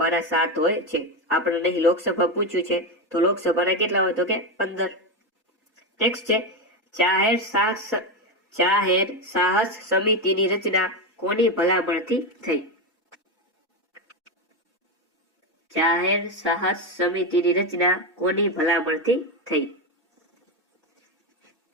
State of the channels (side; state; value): both; normal; correlation 0.12